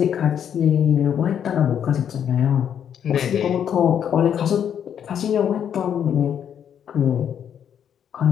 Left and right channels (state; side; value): quieter; right; 8.8 dB